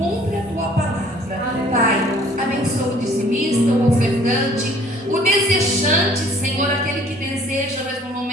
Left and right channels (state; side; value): normal; both; correlation 0.55